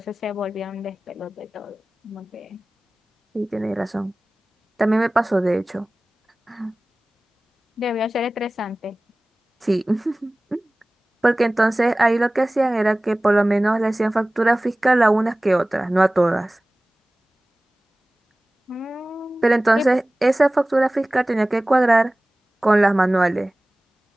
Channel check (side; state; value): both; normal; correlation 0.98